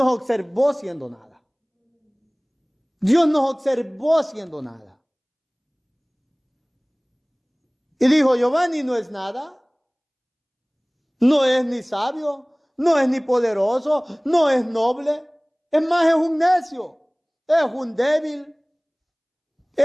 observó siendo nada. Dios nos observó siendo nada. Y dijo, Giovanni no es nada. No es ni sabio. No es ni poderoso, no es noble, es más, es un necio, es un débil,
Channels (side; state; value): both; identical; correlation 1.00